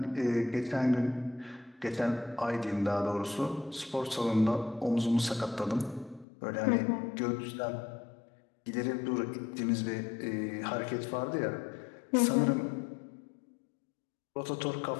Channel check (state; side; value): drops out; right; at 6.2 s